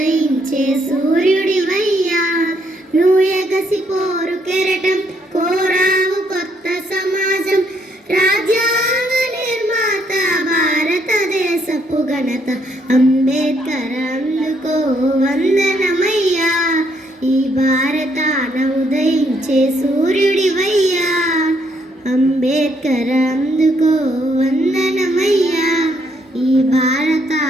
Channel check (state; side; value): normal; both; correlation 0.71